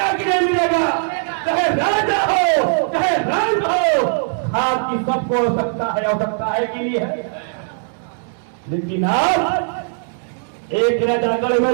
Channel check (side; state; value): left; silent; digital silence